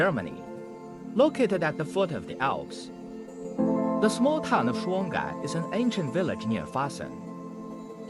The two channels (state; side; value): identical; both; correlation 1.00